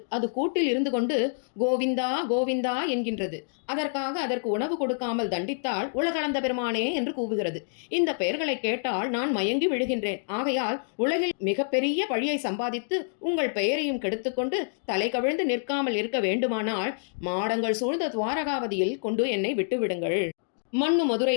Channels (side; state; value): right; silent; digital silence